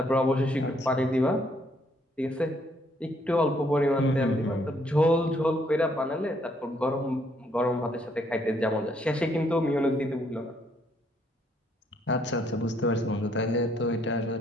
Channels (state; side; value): normal; both; correlation 0.69